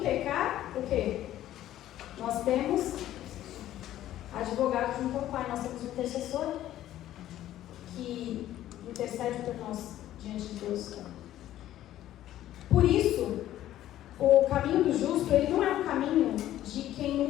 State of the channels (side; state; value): right; quieter; 13.1 dB